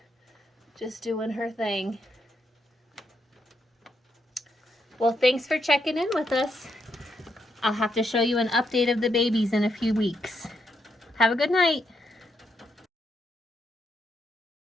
just doing her thing. Well, thanks for checking in with us. I'll have to show you an update of the babies in a few weeks. Have a good night.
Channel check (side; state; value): both; normal; correlation 0.79